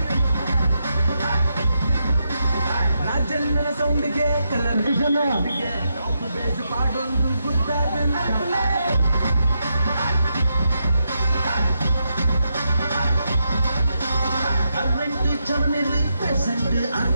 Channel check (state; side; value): inverted; both; correlation -0.84